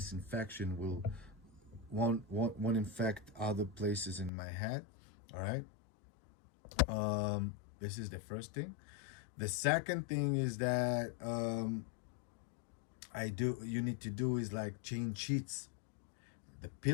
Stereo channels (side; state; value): right; drops out; at 4.3 s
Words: infection won't infect other places in my head. All right. This is the first thing. The second thing is that you need to do is like change sheets. the